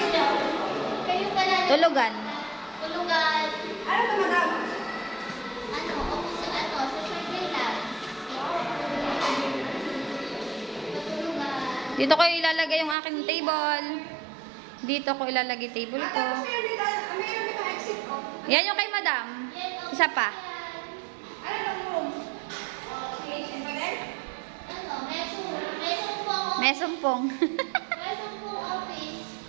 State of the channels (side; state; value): left; drops out; at 13.0 s